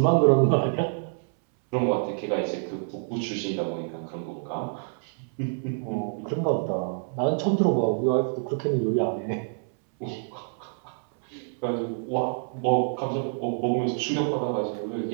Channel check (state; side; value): silent; left; 60 dB below the other